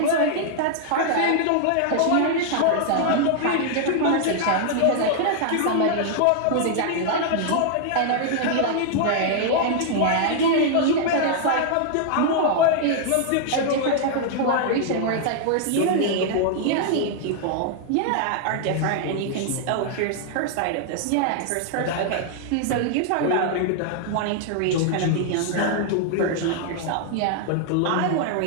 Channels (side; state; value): both; different; correlation 0.00